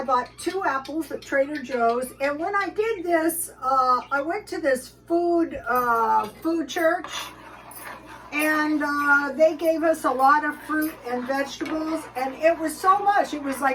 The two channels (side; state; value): both; identical; correlation 1.00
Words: bought 2 apples at Trader Joe's, and when I did this, I went to this food church, and they gave us a lot of fruit and vegetables, and it was so much. It was